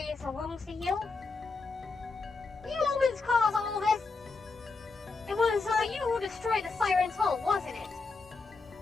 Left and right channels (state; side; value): quieter; right; 4.1 dB